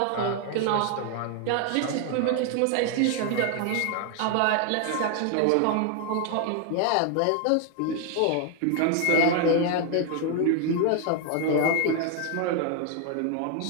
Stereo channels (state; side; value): different; both; correlation 0.00